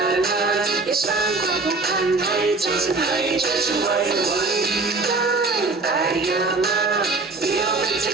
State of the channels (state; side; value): quieter; left; 3.7 dB